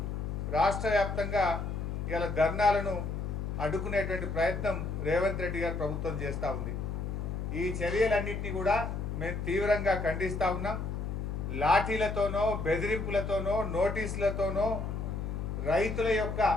రాష్ట్ర వ్యాప్తంగా ఇవాళ ధర్నాలను అడ్డుకునేటువంటి ప్రయత్నం రేవంత్ రెడ్డి గారి ప్రభుత్వం చేస్తూ ఉంది. ఈ చర్యలన్నింటినీ కూడా మేము తీవ్రంగా ఖండిస్తూ ఉన్నాం. లాఠీలతోనో, బెదిరింపులతోనో, నోటీసులతోనో రైతుల యొక్క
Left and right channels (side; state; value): left; noise; hum, 3 dB below the sound